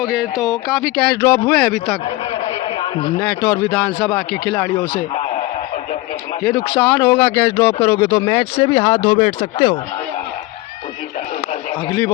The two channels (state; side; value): quieter; right; 19.4 dB